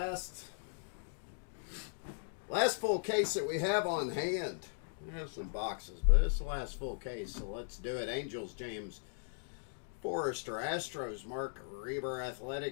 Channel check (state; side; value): silent; right; digital silence